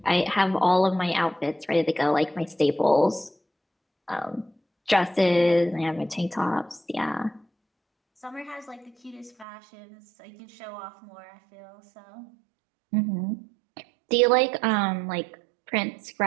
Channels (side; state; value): left; drops out; at 9.5 s